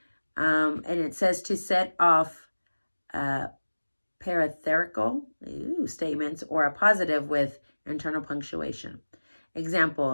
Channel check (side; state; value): both; inverted; correlation -1.00